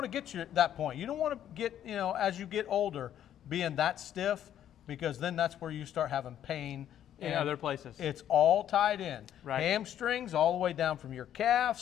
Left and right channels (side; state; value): right; quieter; 10.7 dB